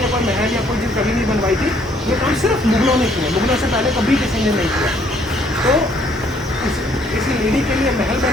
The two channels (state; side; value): normal; both; correlation 0.64